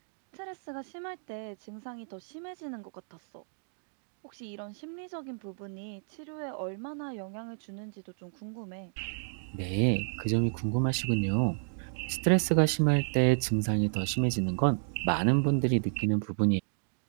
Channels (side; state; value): left; silent; digital silence